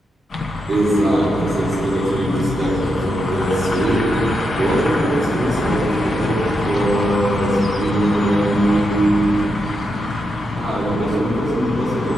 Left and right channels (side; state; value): both; normal; correlation 0.84